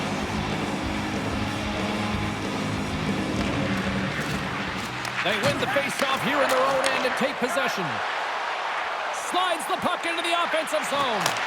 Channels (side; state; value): both; identical; correlation 1.00